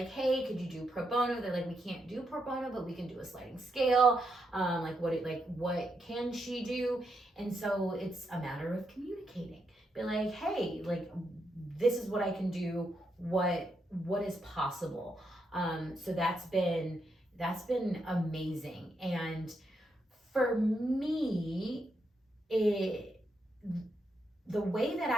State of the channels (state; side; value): normal; both; correlation 0.81